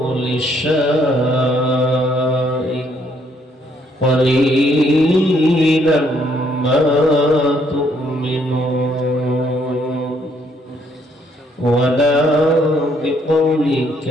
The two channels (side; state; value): both; normal; correlation 0.69